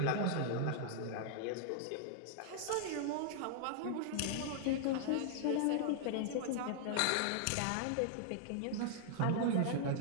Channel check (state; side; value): different; both; correlation -0.01